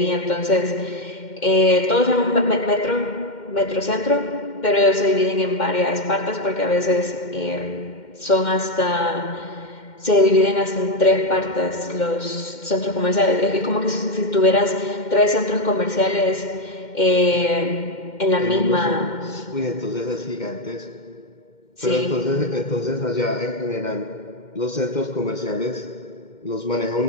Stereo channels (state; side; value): late; right; 2.1 ms